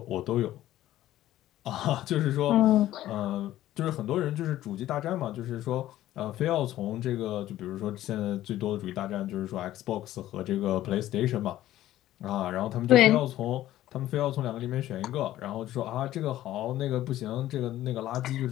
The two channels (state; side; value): quieter; right; 14.0 dB